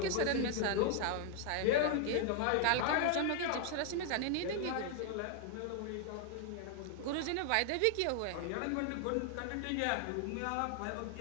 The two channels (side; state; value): both; different; correlation 0.00